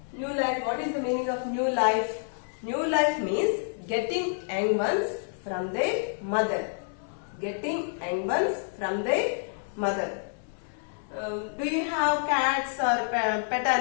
new life? What is the meaning of new life? New life means getting young ones from their mother. Getting young ones from their mother. Do you have cats or pet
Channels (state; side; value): silent; right; 59 dB below the other